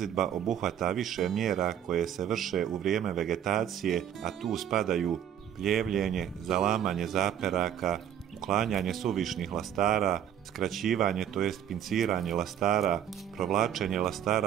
obuhvata više mjera koje se vrše u vrijeme vegetacije, a tu spadaju pljevljenje, zalamanje zaperaka, uklanjanje suvišnih lastara, skraćivanje tj. pinciranje lastara, provlačenje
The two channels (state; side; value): quieter; left; 9.7 dB